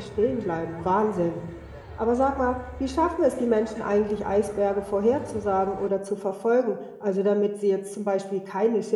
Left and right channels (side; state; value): both; identical; correlation 1.00